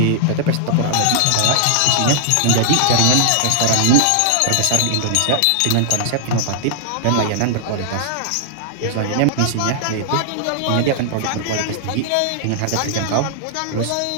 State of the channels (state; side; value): different; both; correlation -0.01